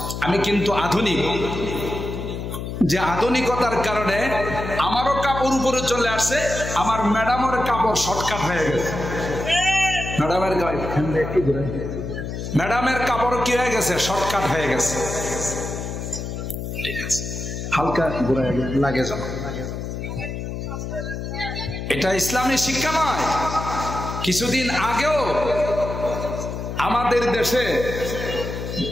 আমি কিন্তু আধুনিক। যে আধুনিকতার কারণে আমারও কাপড় উপরে চলে আসছে, আমার ম্যাডামের কাপড় শর্টকাট হয়ে গেছে। ম্যাডামের কাপড় কি হয়ে গেছে? শর্টকাট হয়ে গেছে। ঠিক আছে, হালকা লাগে যাবে। এটা ইসলামী শিক্ষা নয়। কিছুদিন আগেও আমাদের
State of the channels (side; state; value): left; noise; hum, 6 dB below the sound